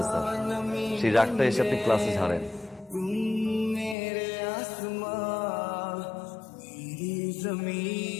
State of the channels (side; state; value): right; drops out; at 4.0 s